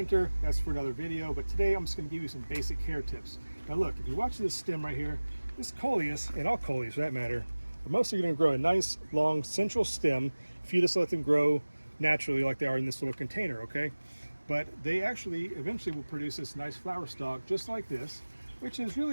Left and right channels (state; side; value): inverted; both; correlation -1.00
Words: That's for another video, but today I'm just going to give you some basic care tips. Now look, if you watch this stem right here, this Coleus, and all Coleus for that matter, are mostly going to grow a nice long central stem if you just let them grow naturally like they are in this little container, okay? But they actually eventually will produce this nice flower stalk just like this, which is